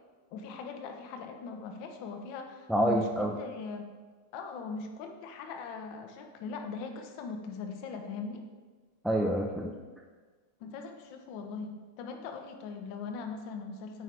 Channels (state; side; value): normal; both; correlation 0.56